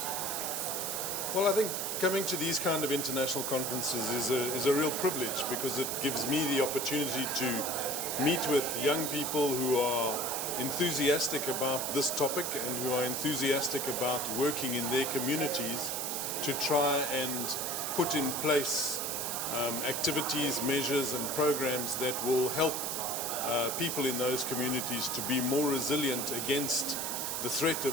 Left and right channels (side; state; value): right; noise; hiss, 2 dB below the sound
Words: conference? Well, I think coming to these kind of international conferences is a real privilege, because it gives me the opportunity to meet with young people who are enthusiastic about this topic and who are enthusiastic about working in their communities to try and put in place activities, measures and programs that will help people in those communities to be more resilient against the threat of